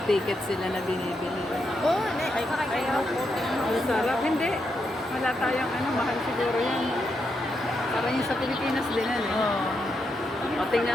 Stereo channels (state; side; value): normal; both; correlation 0.82